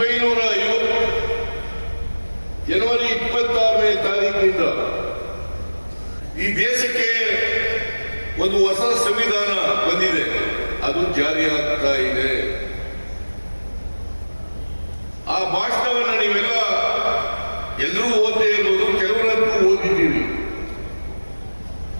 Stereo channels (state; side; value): inverted; both; correlation -1.00